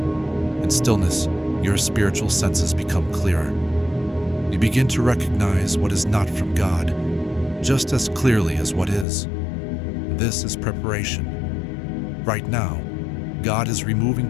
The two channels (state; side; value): drops out; right; at 9.1 s